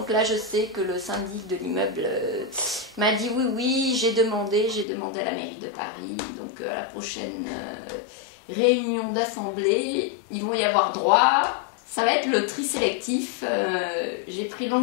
là je sais que le syndic de l'immeuble m'a dit oui, j'ai demandé à la mairie de Paris, donc à la prochaine réunion d'assemblée, ils vont y avoir droit. Ça va être le tri sélectif. J'ai pris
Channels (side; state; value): right; drops out; at 4.9 s